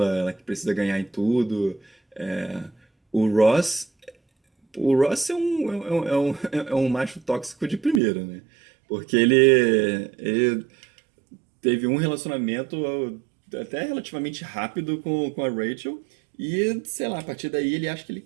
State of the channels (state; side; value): drops out; left; at 8.0 s